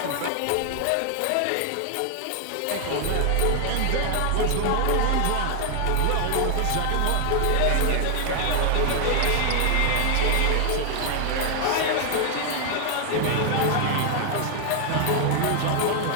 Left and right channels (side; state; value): both; different; correlation 0.00